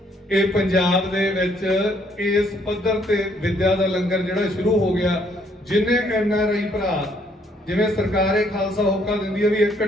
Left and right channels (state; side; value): normal; both; correlation 0.68